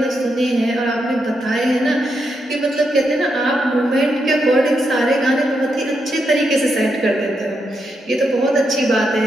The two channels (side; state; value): both; normal; correlation 0.82